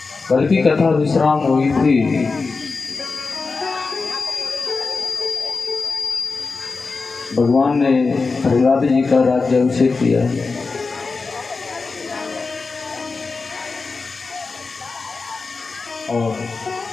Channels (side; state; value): right; quieter; 4.2 dB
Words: कल की कथा विश्राम हुई थी। भगवान ने प्रहलाद जी का राज्याभिषेक किया। और